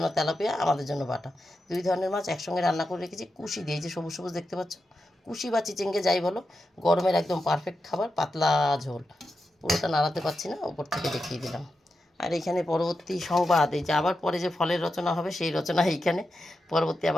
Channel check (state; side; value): normal; both; correlation 0.89